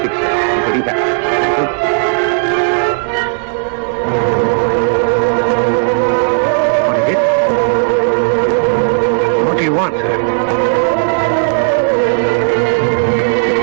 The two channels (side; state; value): left; silent; digital silence